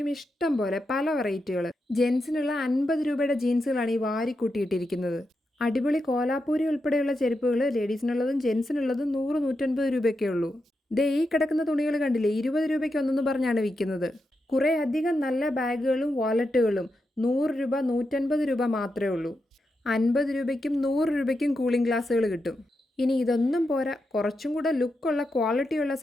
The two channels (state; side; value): normal; both; correlation 0.86